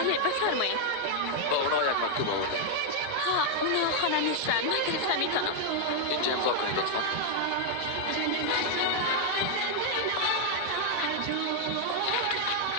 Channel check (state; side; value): different; both; correlation 0.00